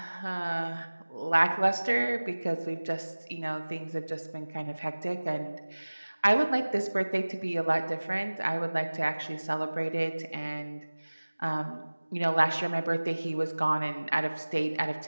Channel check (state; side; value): inverted; both; correlation -1.00